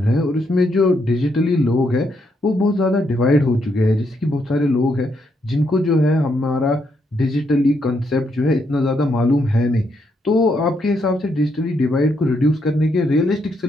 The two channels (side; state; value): both; normal; correlation 0.77